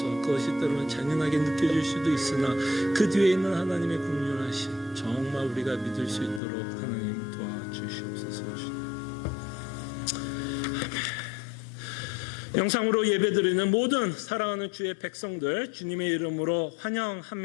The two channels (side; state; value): right; drops out; at 6.4 s